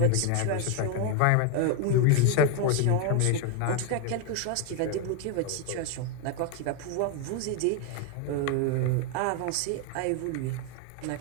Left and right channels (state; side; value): different; both; correlation 0.01